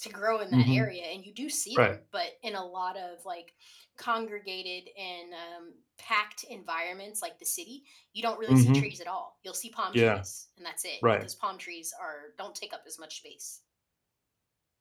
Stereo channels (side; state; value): both; identical; correlation 1.00